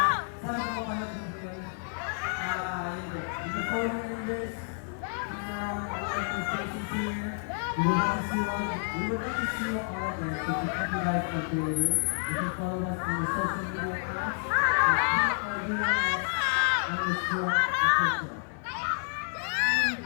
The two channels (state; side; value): silent; right; digital silence